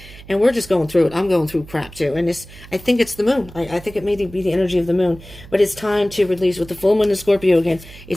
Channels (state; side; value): noise; right; hum, 19 dB below the sound